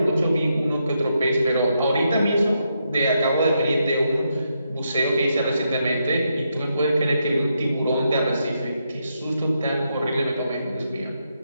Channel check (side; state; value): both; inverted; correlation -0.81